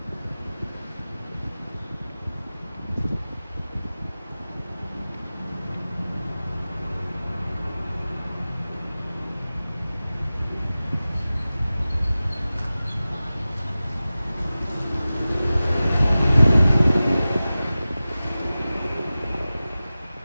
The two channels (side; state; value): both; inverted; correlation -0.96